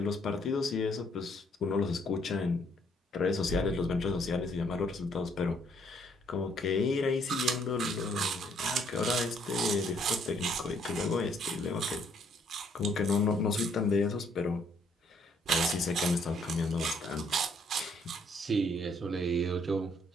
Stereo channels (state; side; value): normal; both; correlation 0.67